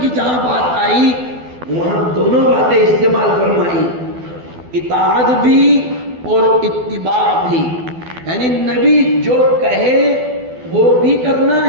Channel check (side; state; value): left; late; 12 ms